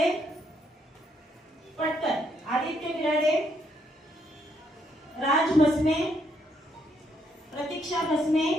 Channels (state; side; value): normal; both; correlation 0.73